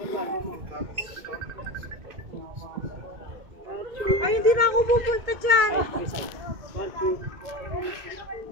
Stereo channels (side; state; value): left; late; 2.2 ms